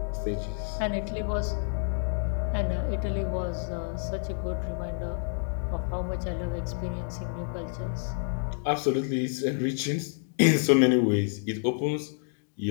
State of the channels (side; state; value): right; silent; digital silence